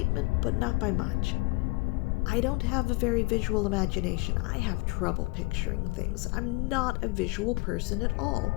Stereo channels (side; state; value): right; quieter; 26.4 dB